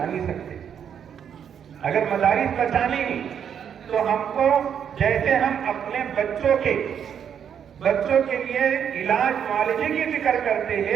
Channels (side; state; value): left; quieter; 8.3 dB